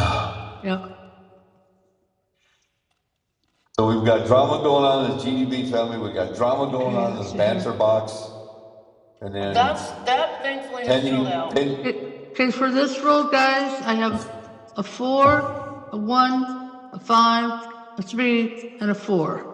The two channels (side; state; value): both; identical; correlation 1.00